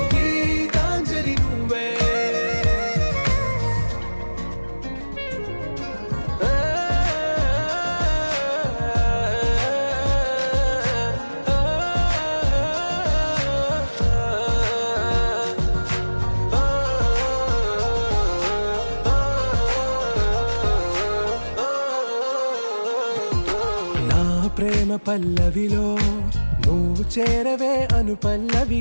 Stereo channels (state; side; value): inverted; both; correlation -1.00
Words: గీతాంజలి నువ్వే ప్రేమ పల్లవిలో నువ్వు చేరవే అను